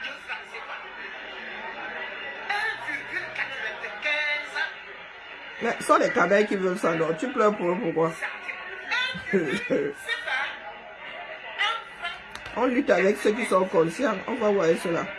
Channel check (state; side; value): identical; both; correlation 1.00